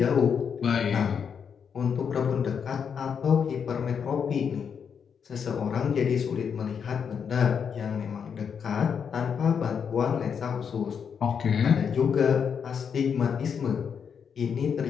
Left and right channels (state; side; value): quieter; right; 7.0 dB